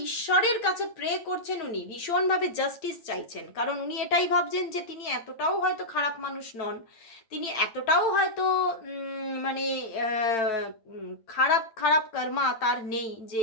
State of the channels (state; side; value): late; right; 8.8 ms